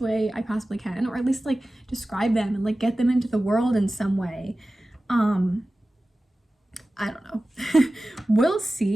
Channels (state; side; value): normal; both; correlation 0.96